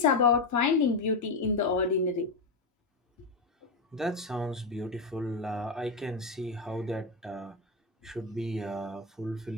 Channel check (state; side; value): quieter; right; 3.6 dB